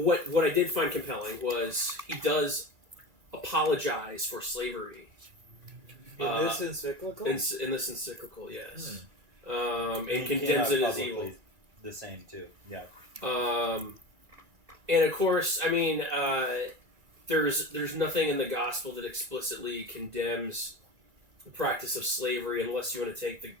I did find compelling was he does apologize for slavery. In this encyclical? In this encyclical, yes. And condemns it as evil. The same, too. Yeah. And of course, I mean, there's nothing in the gospel that explicitly condemns the practice of slavery, unless you want to take the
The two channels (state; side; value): late; left; 2.1 ms